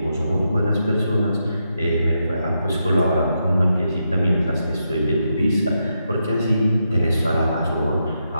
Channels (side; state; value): both; inverted; correlation -0.83